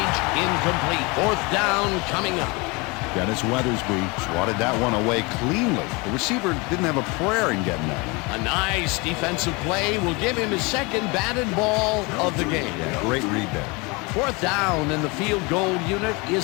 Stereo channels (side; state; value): right; quieter; 27.2 dB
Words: Incomplete. 4th down coming up. Dennis Weathersby swatted that one away cleanly. The receiver didn't have a prayer in getting that one. A nice defensive play will give him his 2nd batted ball of the game. Yeah, great read there. 4th down, and the field goal unit